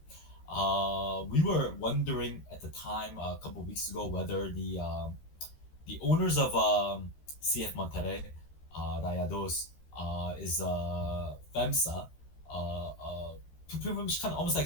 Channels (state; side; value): late; right; 13 ms